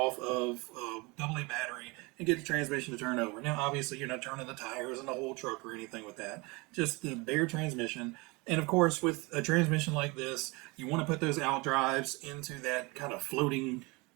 of a AA battery and get the transmission to turn over. Now, obviously, you're not turning the tires and the whole truck or anything with that. Just the bare transmission. And of course, with a transmission like this, you want to put those out drives into that kind of floating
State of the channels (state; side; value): quieter; left; 26.1 dB